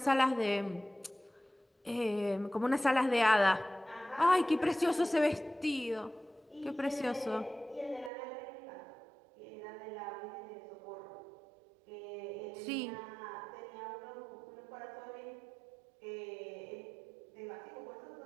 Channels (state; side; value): drops out; left; at 8.1 s